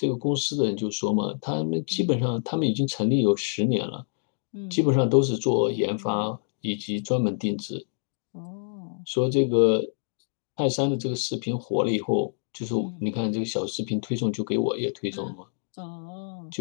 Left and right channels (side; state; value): right; silent; digital silence